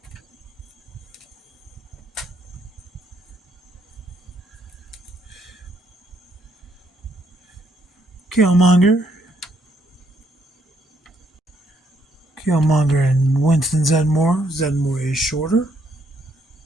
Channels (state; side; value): normal; both; correlation 0.72